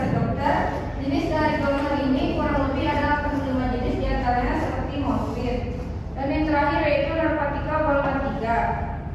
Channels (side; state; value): both; identical; correlation 1.00